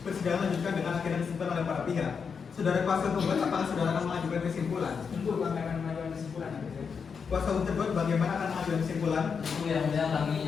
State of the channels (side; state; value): right; quieter; 6.0 dB